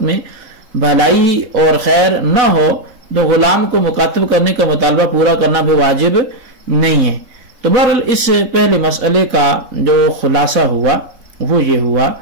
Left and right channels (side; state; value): left; late; 4.0 ms